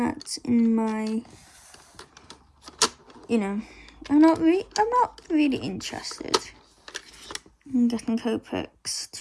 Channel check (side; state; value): both; identical; correlation 1.00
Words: in my, I'm not really interested in getting Copics.